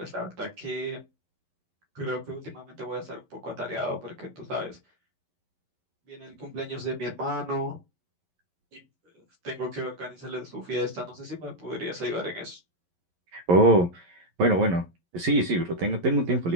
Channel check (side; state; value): left; late; 11 ms